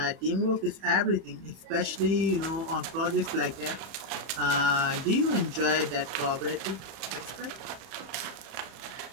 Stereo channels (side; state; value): left; late; 31 ms